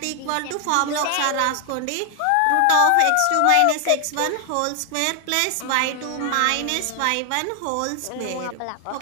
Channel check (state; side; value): different; both; correlation 0.00